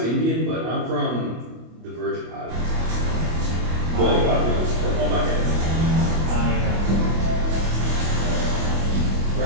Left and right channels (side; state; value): left; late; 25 ms